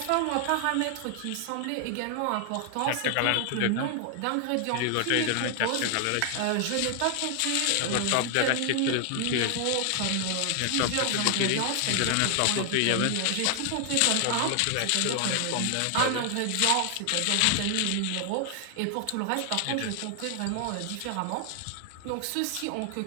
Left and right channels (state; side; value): different; both; correlation 0.00